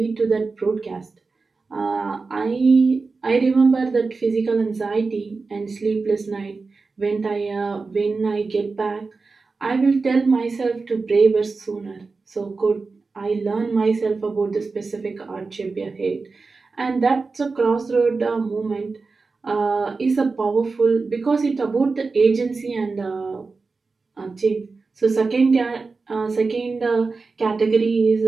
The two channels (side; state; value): left; quieter; 4.2 dB